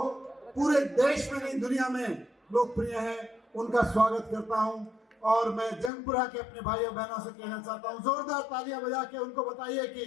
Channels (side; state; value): right; drops out; at 5.9 s